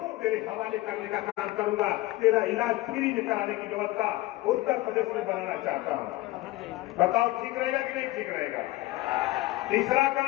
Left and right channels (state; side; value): quieter; right; 18.5 dB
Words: तेरे हवाले करने का काम करूंगा। तेरा इलाज फ्री में कराने की व्यवस्था उत्तर प्रदेश में बनाना चाहता हूं। बताओ ठीक रहेगा कि नहीं ठीक रहेगा। तीसरा